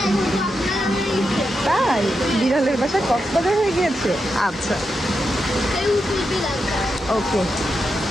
তাই বিড়ালের বাসা কক্সবাজার হয়ে গিয়েছে। আচ্ছা, ওকে।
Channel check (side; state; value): both; normal; correlation 0.86